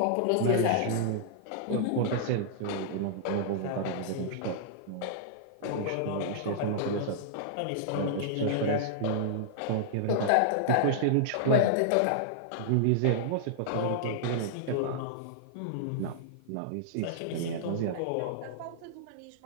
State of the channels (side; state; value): both; different; correlation -0.01